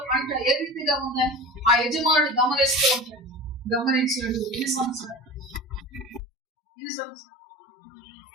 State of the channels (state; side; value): drops out; right; at 6.2 s